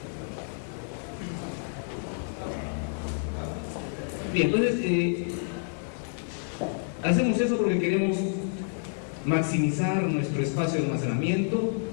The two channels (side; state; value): right; silent; digital silence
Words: entonces hacemos eso porque queremos maximizar nuestro espacio de almacenamiento,